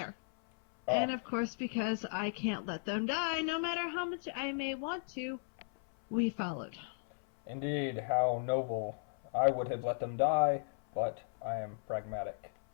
And of course, because I can't let them die, no matter how much I may want to, we followed. Indeed, how noble. I would have let them die, but I am pragmatic.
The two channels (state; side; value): silent; right; 54 dB below the other